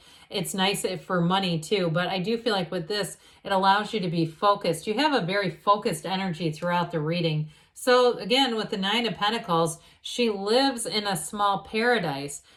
It's nice for money too, but I do feel like with this, it allows you to be focused. You have a very focused energy throughout the reading. So again, with the Nine of Pentacles, she lives in a small paradise.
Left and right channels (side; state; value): both; identical; correlation 1.00